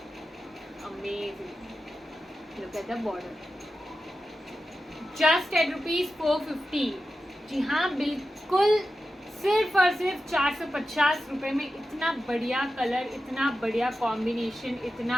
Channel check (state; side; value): normal; both; correlation 0.91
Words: Amazing. Look at the border. Just at ₹450. जी हाँ, बिल्कुल सिर्फ और सिर्फ 450 रुपये में इतना बढ़िया कलर, इतना बढ़िया कॉम्बिनेशन, इतना